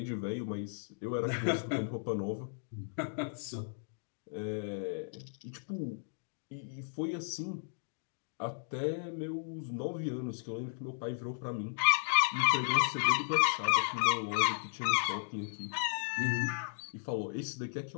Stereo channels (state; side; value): silent; right; digital silence